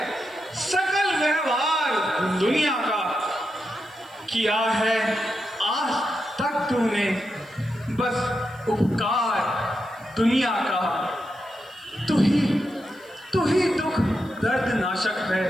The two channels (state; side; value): noise; left; hiss, 28 dB below the sound